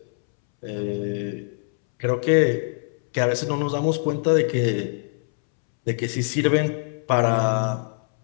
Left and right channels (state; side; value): silent; right; 63 dB below the other